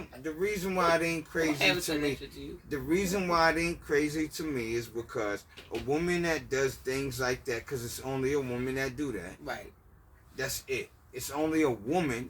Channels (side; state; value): both; identical; correlation 1.00